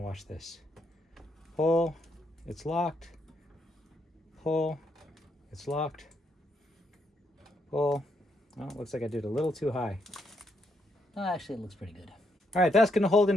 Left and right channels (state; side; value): normal; both; correlation 0.76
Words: watch this. Pull. It's locked. Pull. It's locked. Pull. Oh, looks like I did a little too high. Oh, actually, it looks pretty good. All right, that's going to hold